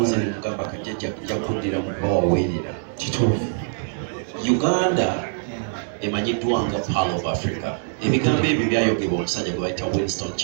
nemugamba kajjajja kuddira mu bawaweerera kituufu. Uganda emanyiddwa nga Pearl of Africa. Ebigambo ebyo byayogebwa omusajja gwe bayita Winston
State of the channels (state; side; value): silent; left; digital silence